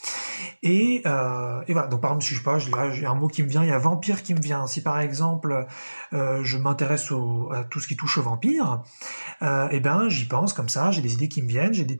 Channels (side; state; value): both; inverted; correlation -1.00